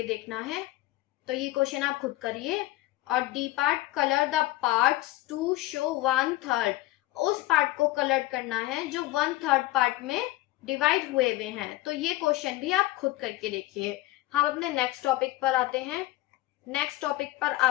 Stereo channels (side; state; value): right; quieter; 17.6 dB